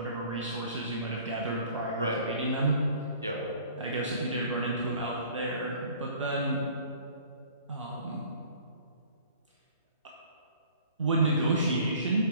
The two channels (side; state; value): both; inverted; correlation -0.51